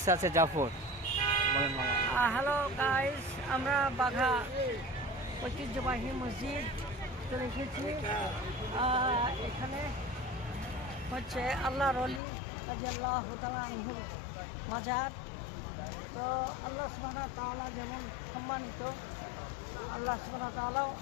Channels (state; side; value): drops out; right; at 12.2 s